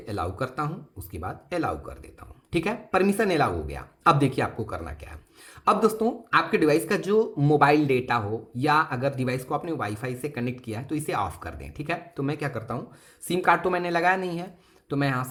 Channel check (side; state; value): both; identical; correlation 1.00